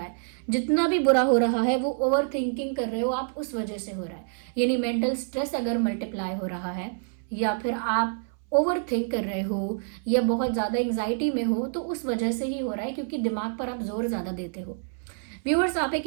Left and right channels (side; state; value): left; silent; 60 dB below the other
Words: है। जितना भी बुरा हो रहा है वो ओवर थिंकिंग कर रहे हो आप, उस वजह से हो रहा है। यानी मेंटल स्ट्रेस अगर मल्टीप्लाई हो रहा है, या फिर आप ओवर थिंक कर रहे हो, या बहुत ज्यादा एंग्जाइटी में हो, तो उस वजह से ही हो रहा है, क्योंकि दिमाग पर आप जोर ज्यादा देते हो। व्यूअर्स, आप एक